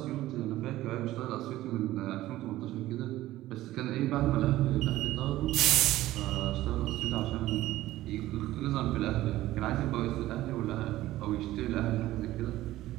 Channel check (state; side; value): quieter; left; 15.7 dB